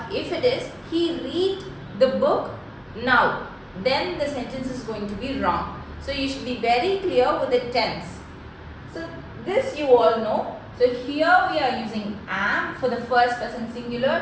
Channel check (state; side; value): identical; both; correlation 1.00